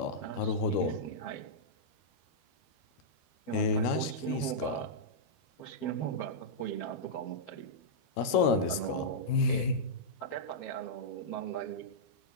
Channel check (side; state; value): right; late; 13 ms